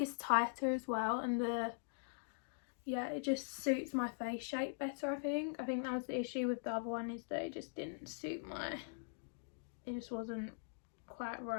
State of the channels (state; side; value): silent; right; digital silence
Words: tighter as well, and yeah, it just suits my face shape better, I think. I think that was the issue with the other one, is that it just didn't suit my... It just wasn't quite